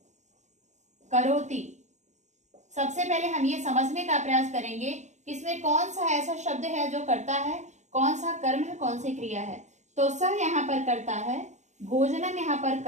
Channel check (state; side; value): late; left; 0.34 ms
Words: करोति। सबसे पहले हम ये समझने का प्रयास करेंगे कि इसमें कौन सा ऐसा शब्द है जो कर्ता है, कौन सा कर्म है, कौन सी क्रिया है। तो सह यहाँ पर कर्ता है, भोजनम यहाँ पर